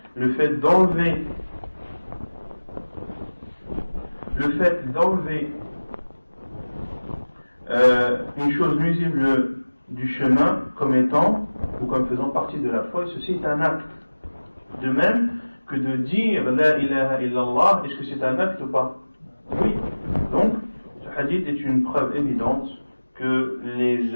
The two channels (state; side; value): inverted; both; correlation -1.00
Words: le fait d'enlever une chose nuisible du chemin comme étant ou comme faisant partie de la foi, et ceci est un acte. De même que de dire La ilaha illallah, est-ce que c'est un acte ou pas? Oui. Donc, ce hadith est une preuve évidente que les